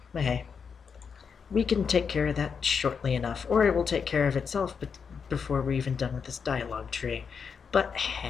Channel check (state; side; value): quieter; right; 6.2 dB